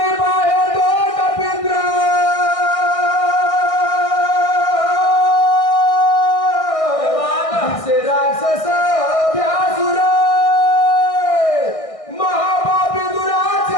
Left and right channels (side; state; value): right; late; 1.6 ms